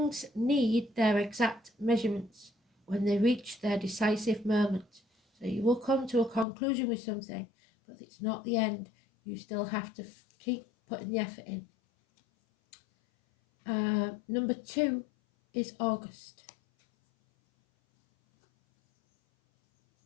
need their exact measurements when they reach their decisive moment. So you will come to a conclusion with something, but it's not the end. You still have to keep putting the effort in. Number 2 is August.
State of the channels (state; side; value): drops out; right; at 6.5 s